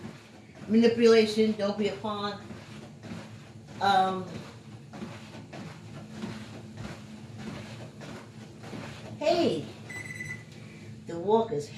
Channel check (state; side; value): identical; both; correlation 1.00